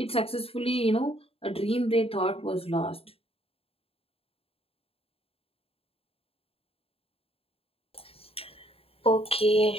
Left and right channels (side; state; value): right; late; 0.28 ms